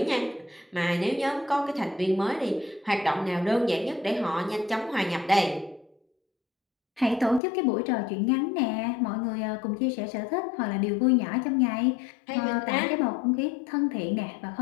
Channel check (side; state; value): right; drops out; at 7.4 s